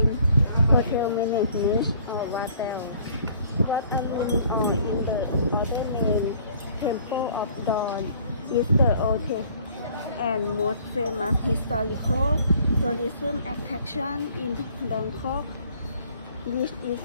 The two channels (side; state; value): both; inverted; correlation -0.57